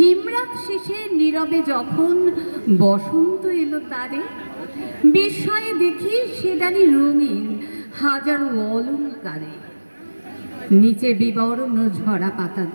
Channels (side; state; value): both; inverted; correlation -1.00